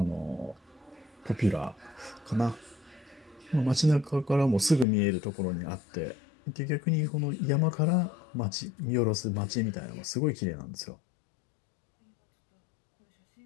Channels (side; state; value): right; drops out; at 4.9 s